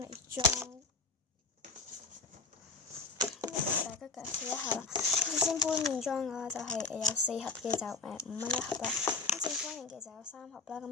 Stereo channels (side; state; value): right; quieter; 4.0 dB